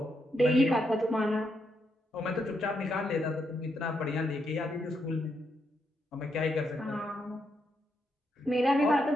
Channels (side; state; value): both; normal; correlation 0.80